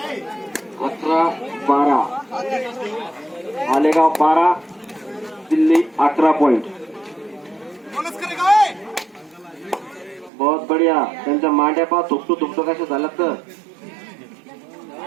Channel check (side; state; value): left; drops out; at 10.3 s